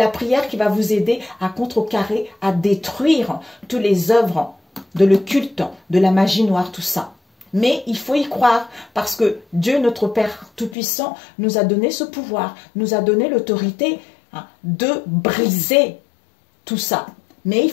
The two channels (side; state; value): right; drops out; at 10.8 s